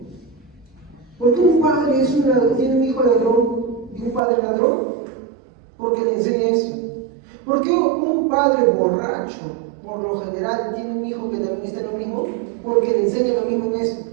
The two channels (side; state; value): left; drops out; at 4.2 s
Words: ¿Por qué un padre tiene un hijo ladrón y un padre ladrón? Porque le enseña eso. ¿Por qué un padre borracho, por lo general, tiene un hijo que también está en lo mismo? Porque le enseña lo mismo en eso.